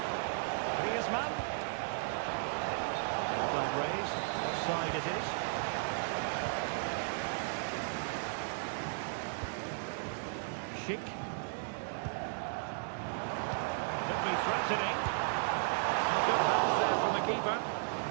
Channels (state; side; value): silent; left; digital silence